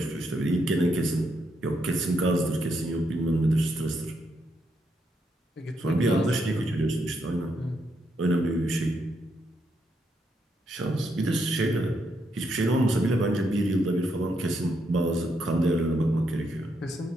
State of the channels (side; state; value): both; normal; correlation 0.79